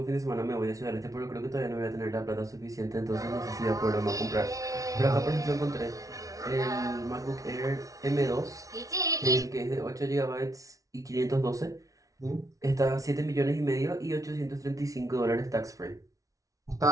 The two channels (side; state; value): left; late; 0.17 ms